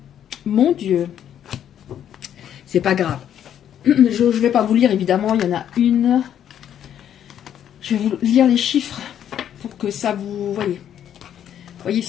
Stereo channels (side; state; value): right; quieter; 9.9 dB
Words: Mon Dieu. C'est pas grave. Je ne vais pas vous lire, évidemment. Il y en a une. Je vais vous lire les chiffres pour que ça vous... Voyez